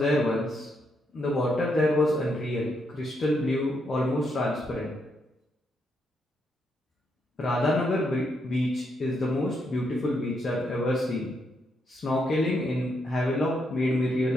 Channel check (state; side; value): normal; both; correlation 0.78